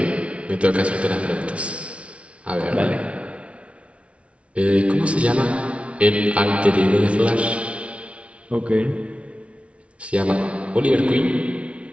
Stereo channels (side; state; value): left; late; 0.062 ms